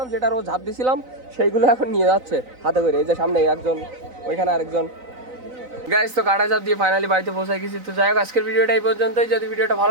যেটার ও ঝাঁপ দিছিলাম সেইগুলো এখন নিয়ে যাচ্ছে হাতে করে। এই যে সামনে একজন, ওইখানে আরেকজন। গাইস তো কাটা ঝাঁপ দিয়ে ফাইনালি বাড়িতে পৌঁছে গেছি। তো যাই হোক আজকের ভিডিওটা এই পর্যন্তই। যদি ভিডিওটা ভালো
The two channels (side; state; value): left; late; 3.9 ms